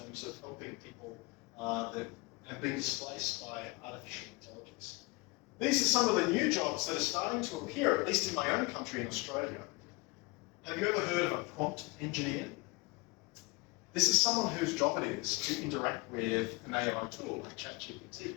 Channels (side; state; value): right; quieter; 25.9 dB